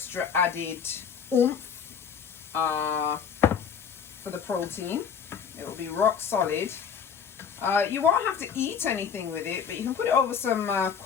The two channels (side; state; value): right; quieter; 7.1 dB